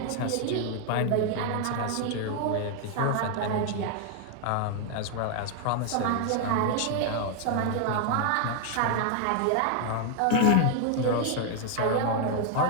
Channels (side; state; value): both; different; correlation 0.00